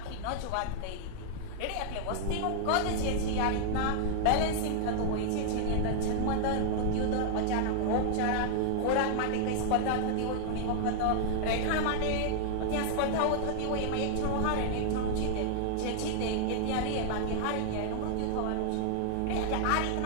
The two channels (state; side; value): different; both; correlation 0.00